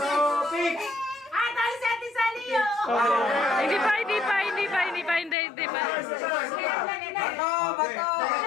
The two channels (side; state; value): right; drops out; at 5.4 s